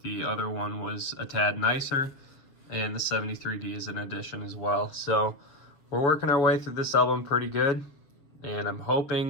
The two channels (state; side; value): late; right; 7.2 ms